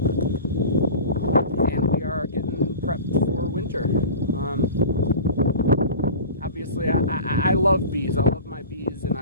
we are getting prepped for winter. Obviously, I love bees. I love my bees, and I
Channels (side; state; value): both; inverted; correlation -0.35